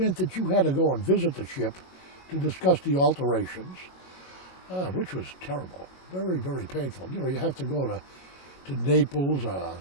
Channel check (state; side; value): late; right; 22 ms